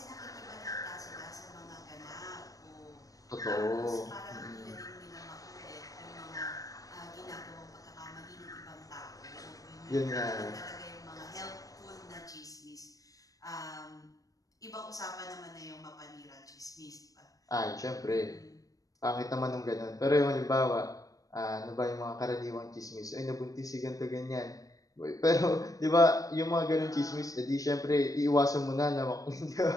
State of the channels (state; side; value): late; right; 0.17 ms